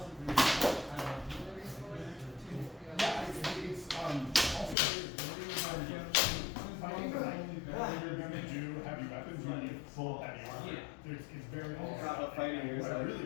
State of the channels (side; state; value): right; drops out; at 4.8 s